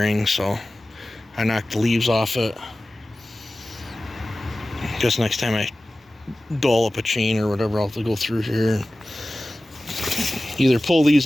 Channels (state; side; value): normal; both; correlation 0.96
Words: so I knocked the leaves off it. Guess next time I dull up a chain or whatever, I'll have to go through here and either pull